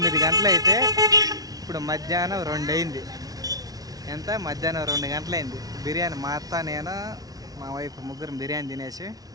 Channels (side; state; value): left; late; 0.18 ms